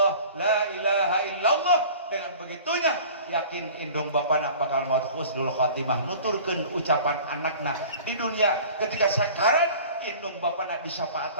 la ilaha illallah. Dengan begitunya yakin indung bapana bakal maut husnul khatimah nuturkeun ucapan anakna di dunia ketika sakarat indung bapana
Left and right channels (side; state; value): both; inverted; correlation -0.44